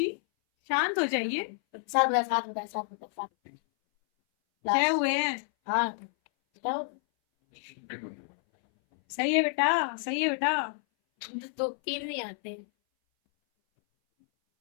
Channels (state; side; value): silent; right; 58 dB below the other